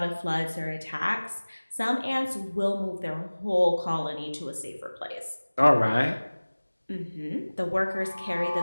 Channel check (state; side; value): inverted; both; correlation -1.00